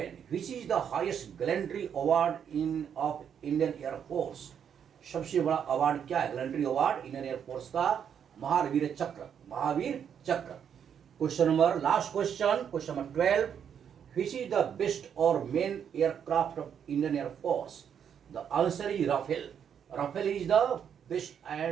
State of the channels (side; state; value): left; quieter; 8.2 dB